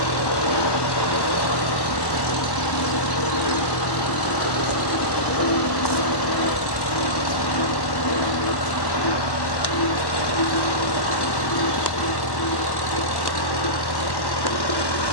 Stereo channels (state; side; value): late; right; 1.1 ms